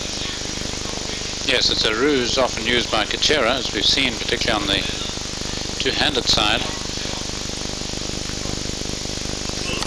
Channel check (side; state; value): both; identical; correlation 1.00